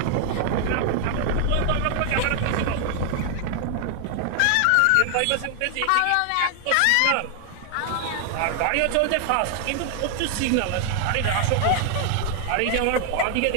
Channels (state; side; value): different; both; correlation 0.00